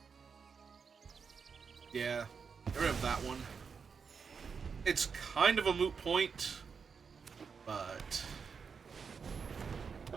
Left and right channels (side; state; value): left; quieter; 5.8 dB